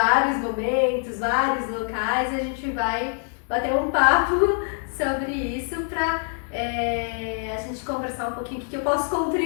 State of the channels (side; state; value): right; silent; 57 dB below the other